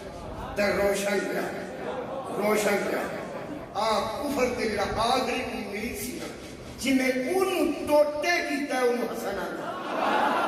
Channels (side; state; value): both; identical; correlation 1.00